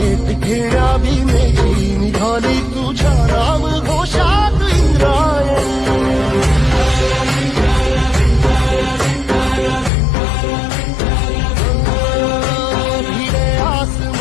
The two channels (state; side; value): drops out; right; at 9.9 s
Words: घेण्या भीमेची निघाली तुझ्या नाम घोषात इंद्रायणी भिडे